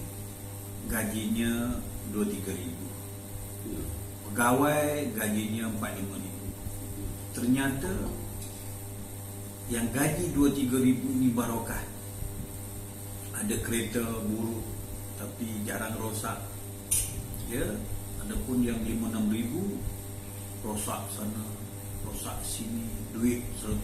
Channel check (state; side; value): identical; both; correlation 1.00